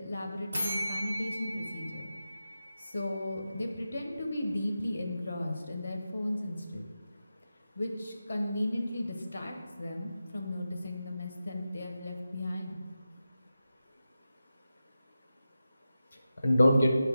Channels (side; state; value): both; inverted; correlation -0.92